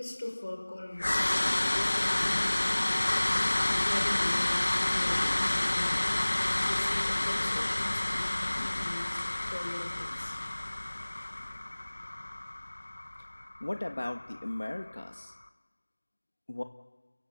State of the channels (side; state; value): both; inverted; correlation -1.00